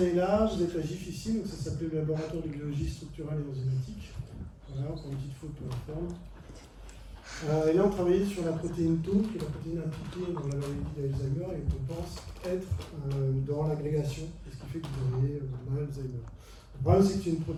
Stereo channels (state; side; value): identical; both; correlation 1.00